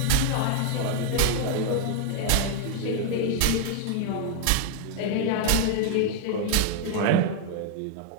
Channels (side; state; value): both; different; correlation 0.00